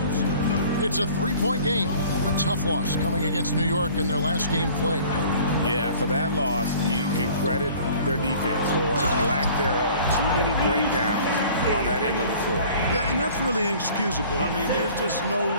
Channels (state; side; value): inverted; both; correlation -0.49